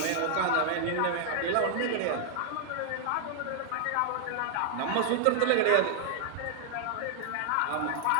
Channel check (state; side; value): different; both; correlation 0.00